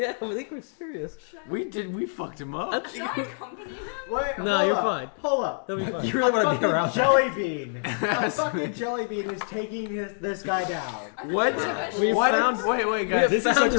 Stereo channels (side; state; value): right; silent; digital silence